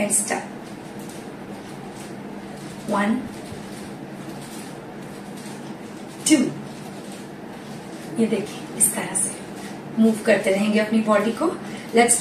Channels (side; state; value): both; identical; correlation 1.00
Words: start. 1 2। ये देखिए, इस तरह से मूव करते रहेंगे अपनी बॉडी को। Let's